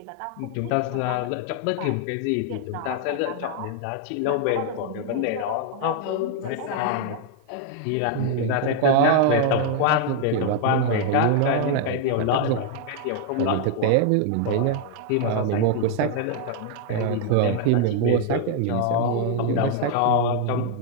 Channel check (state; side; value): different; both; correlation 0.00